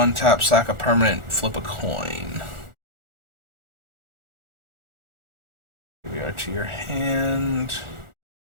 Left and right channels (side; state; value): left; late; 1.4 ms